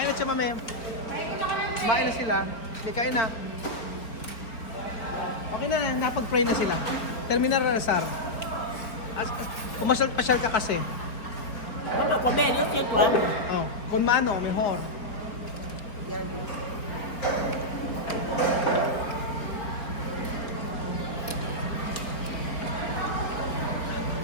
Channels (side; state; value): right; late; 4.4 ms